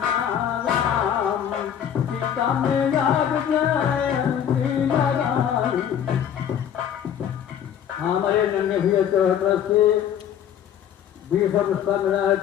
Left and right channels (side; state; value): right; quieter; 9.3 dB